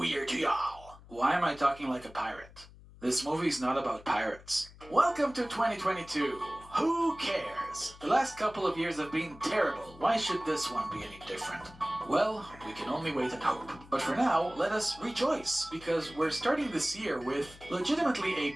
Year to y'all! Why am I talking like a pirate? This movie's not about pirates. Welcome to 2022. Who cares? The last couple of years have been terrible. Why should this one be any different? Well, we can only wait and hope. But for now, let us rejoice, because we're starting this year with legitimately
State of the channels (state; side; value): noise; left; hum, 21 dB below the sound